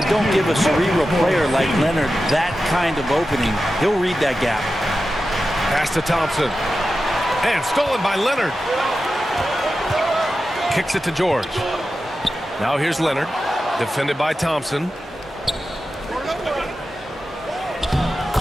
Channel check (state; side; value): normal; both; correlation 0.92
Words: don't give a cerebral player like Leonard that kind of opening. He'll read that gap. Pass to Thompson. And stolen by Leonard. Kicks it to George. Now here's Leonard. Defended by Thompson.